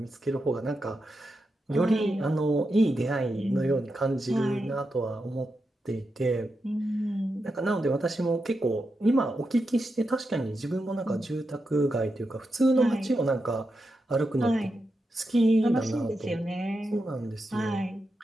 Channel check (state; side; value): normal; both; correlation 0.87